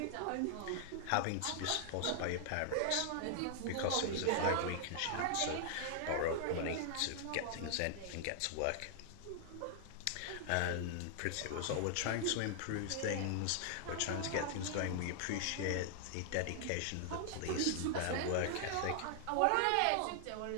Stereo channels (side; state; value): both; different; correlation 0.00